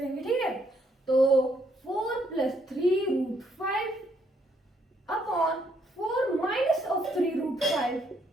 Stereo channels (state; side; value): normal; both; correlation 0.71